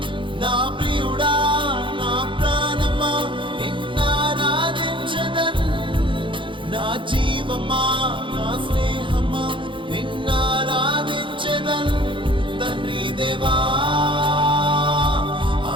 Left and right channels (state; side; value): late; left; 0.24 ms